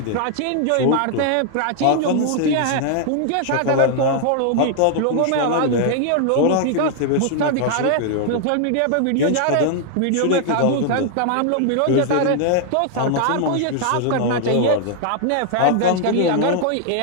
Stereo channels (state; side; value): different; both; correlation 0.00